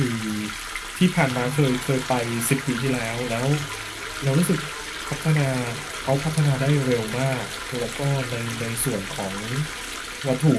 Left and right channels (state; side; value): identical; both; correlation 1.00